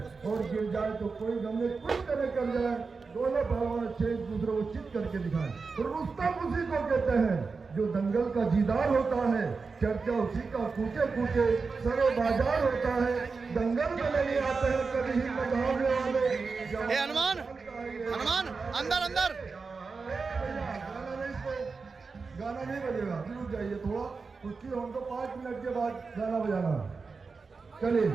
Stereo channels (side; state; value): left; quieter; 4.6 dB